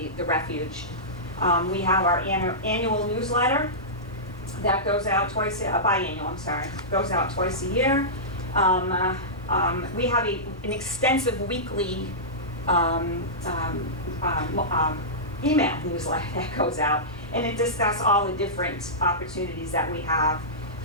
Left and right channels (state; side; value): normal; both; correlation -0.16